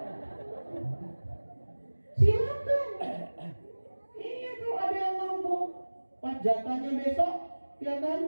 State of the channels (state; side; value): inverted; both; correlation -1.00